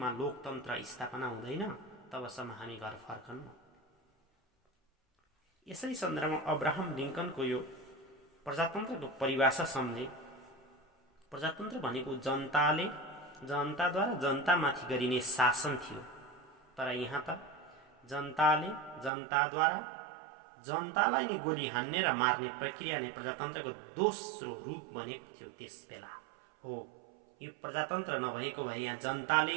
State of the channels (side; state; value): left; drops out; at 19.1 s